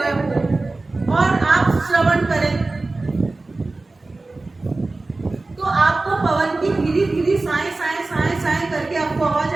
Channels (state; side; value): quieter; left; 3.3 dB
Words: हो और आप श्रवण करें तो आपको पवन की धीरे धीरे साए साए साए साए करके आपको आवाज